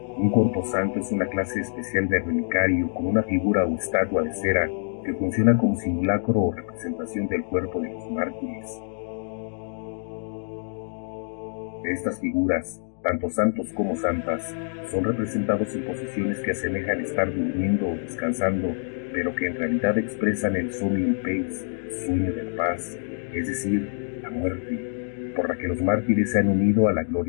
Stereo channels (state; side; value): silent; right; 61 dB below the other